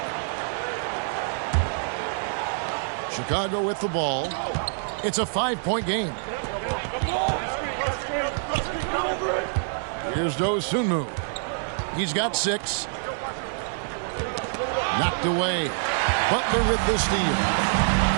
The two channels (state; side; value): silent; left; 61 dB below the other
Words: Chicago with the ball. It's a 5-point game. Here's Dosunmu. He's got 6. Knocked away. Butler with the steal.